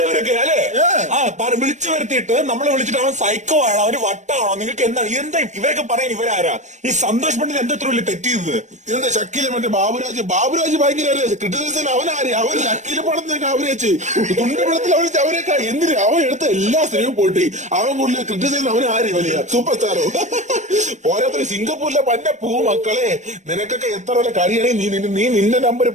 അല്ലേ? വിളിച്ചു വരുത്തിയിട്ട് നമ്മളെ വിളിച്ചിട്ട് അവൻ സൈക്കോ ആണോ, അവന് വട്ടാണോ, നിങ്ങൾക്ക് എന്താണ് ഇവരൊക്കെ പറയാൻ? ഇവരാരാ? ഈ സന്തോഷ് പണ്ഡിത് എന്താ ഇത്ര വലിയ തെറ്റിയത്? ഇതെന്താ ഷക്കീല് മറ്റേ ബാബുരാജ് ഭയങ്കര ക്രിറ്റിസിസം. അവനാര്? അവൻ ഷക്കീല് പടത്തിനൊക്കെ അവരേച്ച് തുണ്ടുപടത്തിൽ അവരേച്ച് അവരൊക്കെ എന്തിന്? അവൻ എടുത്ത എല്ലാ സിനിമയും പോട്ടി അവൻ കൂടുതൽ ക്രിറ്റിസിസം. അവനാര്? വലിയ സൂപ്പർ സ്റ്റാറോ? ഓരോരുത്തർ സിംഗപ്പൂരിലെ പന്റെ മക്കളെ, നിനക്കൊക്കെ എത്ര വരെ കഴിയണേ നീ നിന്റെ നമ്പർ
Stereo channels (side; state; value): left; late; 0.34 ms